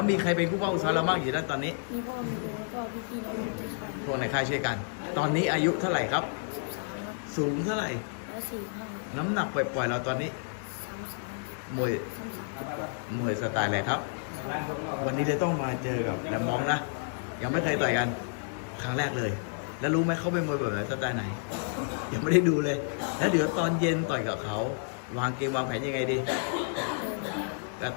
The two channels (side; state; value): right; silent; 58 dB below the other